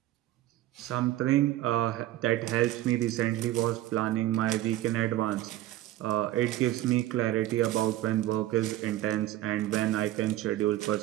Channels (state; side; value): quieter; left; 14.8 dB